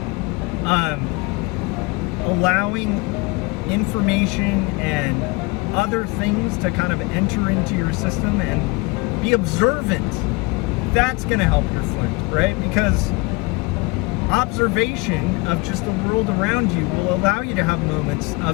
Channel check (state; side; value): quieter; right; 26.0 dB